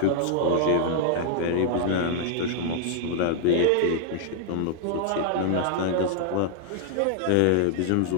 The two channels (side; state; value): both; different; correlation -0.01